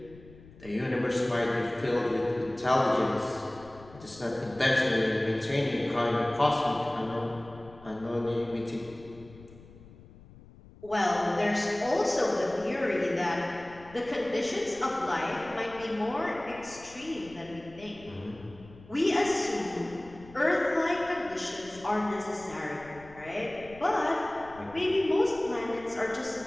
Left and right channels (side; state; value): left; noise; rumble, 21 dB below the sound